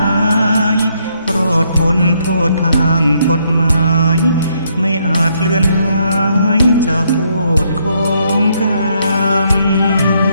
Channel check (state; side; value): inverted; both; correlation -0.73